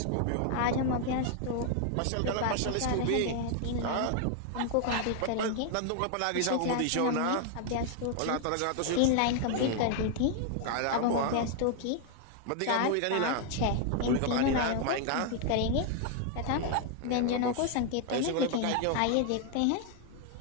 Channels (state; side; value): different; both; correlation 0.00